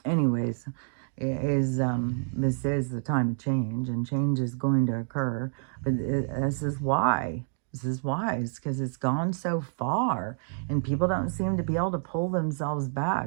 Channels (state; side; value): silent; left; digital silence